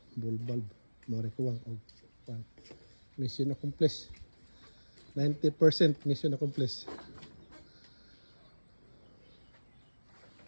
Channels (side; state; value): both; inverted; correlation -1.00